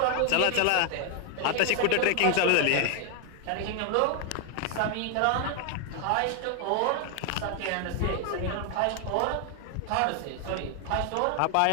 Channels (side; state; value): both; different; correlation 0.00